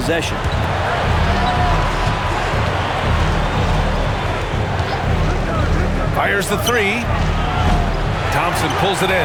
Fires the three. Thompson pulls it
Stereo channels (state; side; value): identical; both; correlation 1.00